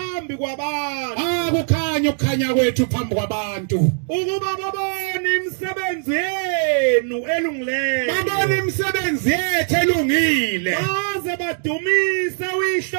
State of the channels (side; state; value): left; silent; 57 dB below the other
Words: kwabantu. Akukhanya ukukhanya kwethu phambi kwabantu. Ukuba babone imisebenzi yenu elungileyo. Babone imisebenzi yethu elungile. Baze badumise